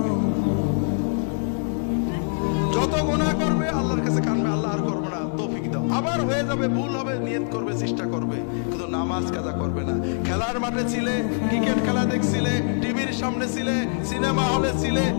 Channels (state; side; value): silent; right; digital silence